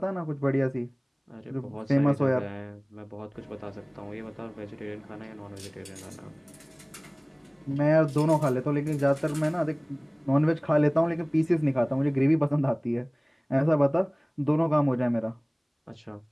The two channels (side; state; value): both; identical; correlation 1.00